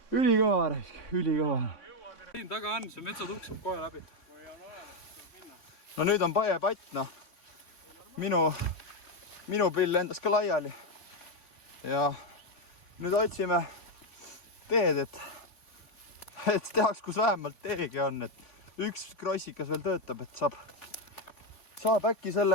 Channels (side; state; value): right; late; 3.6 ms